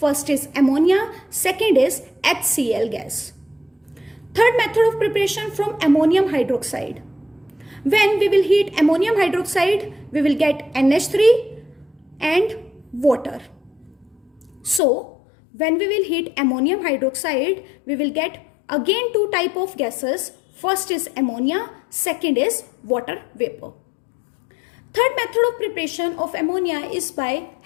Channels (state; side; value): drops out; right; at 14.8 s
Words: is ammonia, second is HCl gas. Third method of preparation from ammonium hydroxide. When we will heat ammonium hydroxide, we will get NH3 and water. So when we will heat ammonium hydroxide, we will get again two type of gases. First is ammonia, second is water vapor. Third method of preparation of ammonia is by